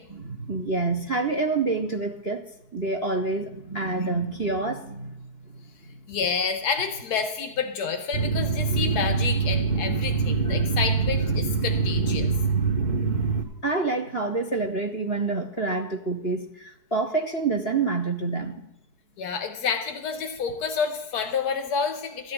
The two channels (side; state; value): right; late; 4.7 ms